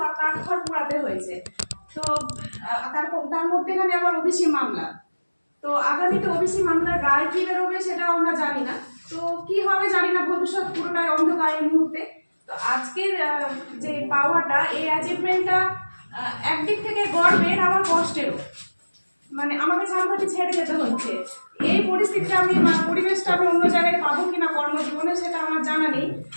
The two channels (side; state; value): both; inverted; correlation -1.00